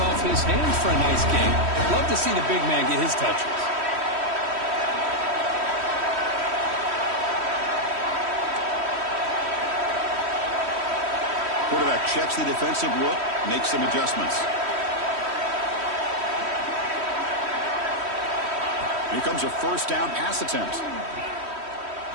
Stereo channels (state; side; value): late; left; 3.1 ms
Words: his hands for a nice game. Love to see the big man get his touches. Quarterback checks the defensive look, makes some adjustments. Here comes a first down pass attempt.